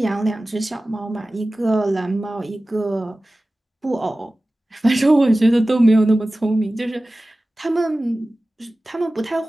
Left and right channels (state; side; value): normal; both; correlation 0.96